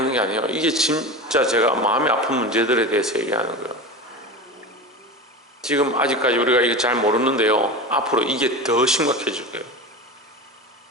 게 아니에요. 이게 진짜 제가 마음이 아픈 문제들에 대해서 얘기하는 거예요. 지금 아직까지 우리가 이게 잘 모르는데요, 앞으로 이게 더 심각해질 거예요.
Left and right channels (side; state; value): both; normal; correlation 0.27